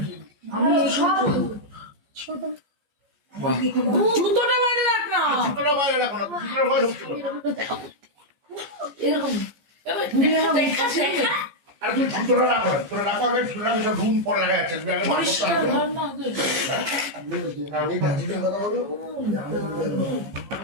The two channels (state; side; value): late; left; 14 ms